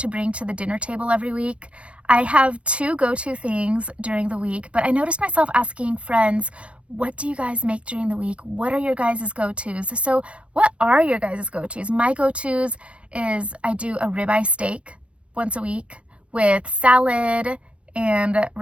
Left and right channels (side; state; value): left; late; 0.061 ms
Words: bring to the dinner table every week. I have two go-to things during the week, but I noticed myself asking friends, what do you guys make during the week? What are your guys' go-tos? So what are your guys' go-tos? My go-tos is I do a ribeye steak once a week with salad and